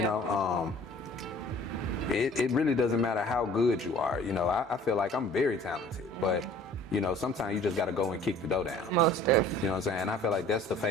know? It really doesn't matter how good you are. You know, I feel like I'm very talented, but you know, sometimes you just got to go and kick the door down. Most definitely. You know what I'm saying? And I feel like that's the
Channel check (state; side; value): normal; both; correlation 0.50